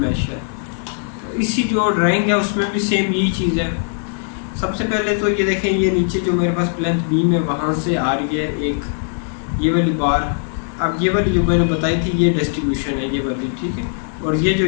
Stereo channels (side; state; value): right; silent; 61 dB below the other